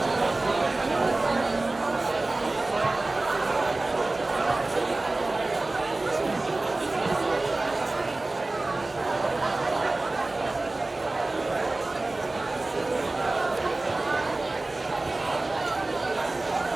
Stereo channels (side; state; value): left; quieter; 3.0 dB